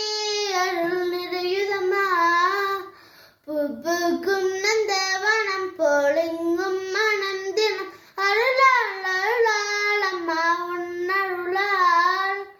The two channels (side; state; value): both; identical; correlation 1.00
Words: அருள் நிறையுதம்மா. பூக்கும் நந்தவனம் போலெங்கும் மனம் தினம் அருளால் அருளால் அம்மா உன்னருளால்.